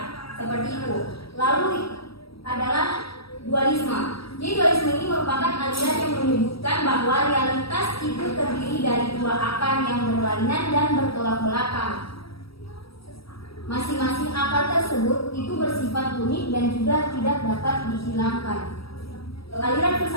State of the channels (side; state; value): right; late; 0.76 ms